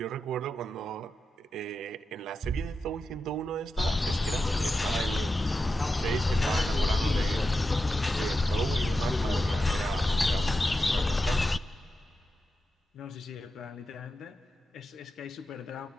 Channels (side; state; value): both; normal; correlation 0.89